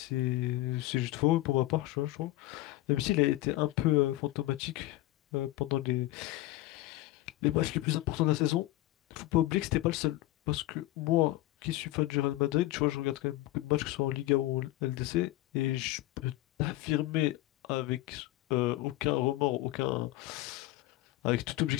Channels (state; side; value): quieter; right; 16.9 dB